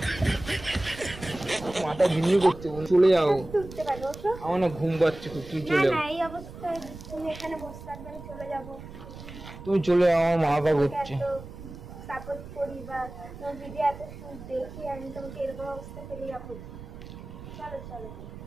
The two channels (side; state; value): right; noise; rumble, 14 dB below the sound